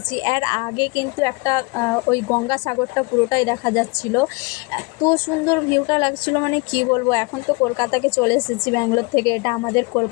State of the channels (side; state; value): right; quieter; 27.9 dB